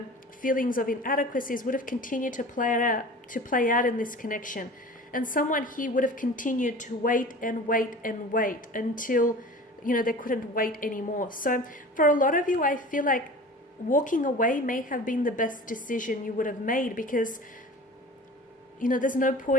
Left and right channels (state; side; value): normal; both; correlation 0.39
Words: feelings of inadequacies would have continued to play out in this connection. And someone here would have continued to wait and wait and wait until, they couldn't wait anymore. So for a lot of you, I feel like walking away may have been the best decision you would have made, because, there's no